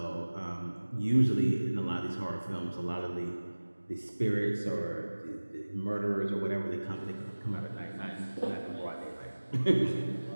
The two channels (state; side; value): inverted; both; correlation -1.00